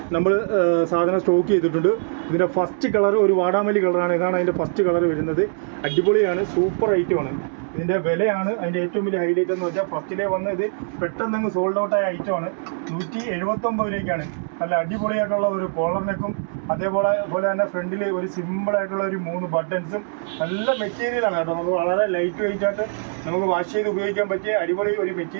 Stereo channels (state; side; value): silent; left; digital silence